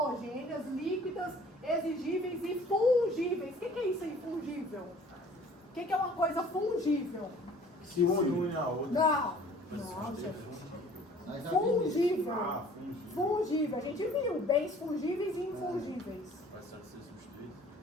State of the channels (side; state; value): both; normal; correlation 0.52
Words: líquidas, exigíveis e fungíveis. O que é isso aí, fungível? O que é uma coisa fungível? Se une a outra. Não. Não, gente. Fungível. Fungível. A gente viu bens fungíveis e infungíveis. Vai ser substituído?